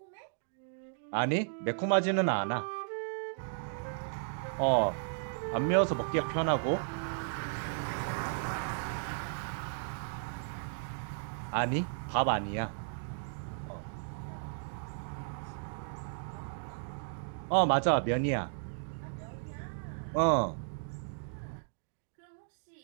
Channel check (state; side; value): silent; left; digital silence